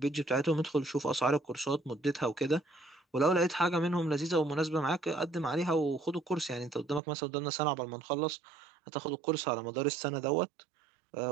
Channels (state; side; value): drops out; left; at 7.0 s